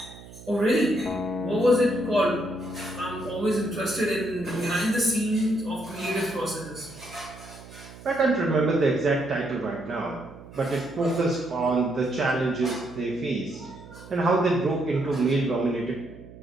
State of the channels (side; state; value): right; noise; hum, 18 dB below the sound